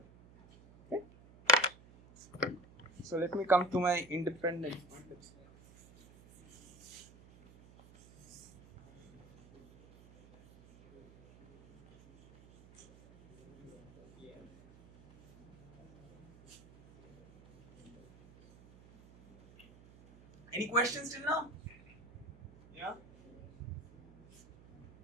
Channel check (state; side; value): noise; right; hum, 22 dB below the sound